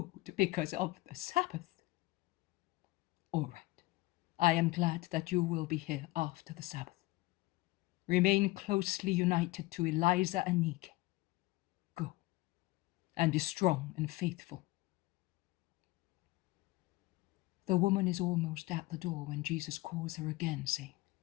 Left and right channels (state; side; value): quieter; right; 20.3 dB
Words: because of the Sabbath. All right. I am glad that you will be here after the Sabbath. Remain closely united to Eliza and Nike. Go, and be strong and faithful. The woman is almost at the door when Jesus calls her again, saying,